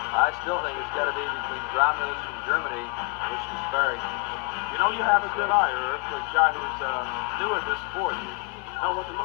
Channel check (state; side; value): quieter; right; 31.7 dB